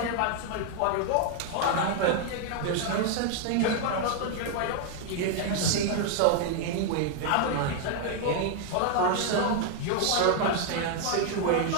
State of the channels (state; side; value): different; both; correlation 0.00